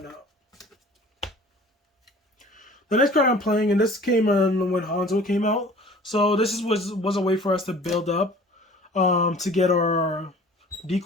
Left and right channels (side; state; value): both; normal; correlation 0.47